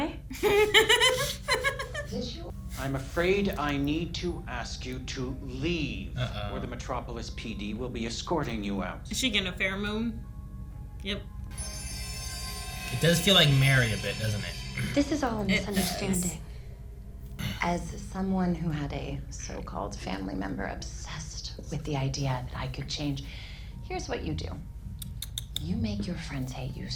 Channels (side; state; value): both; identical; correlation 1.00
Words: I'm afraid I need to ask you to leave, Uh-oh. or the Metropolis PD will be escorting you out. Is she gonna pheromone? Yep. does feel like Mary a bit, doesn't it? This is all a misunderstanding. As someone who had a so-called family member obsessed with the idea that I could change, here's what you do. You make your friends hate you